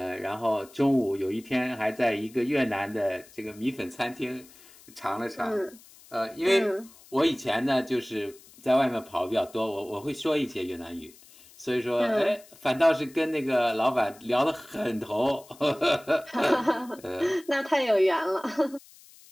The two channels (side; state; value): left; noise; hiss, 24 dB below the sound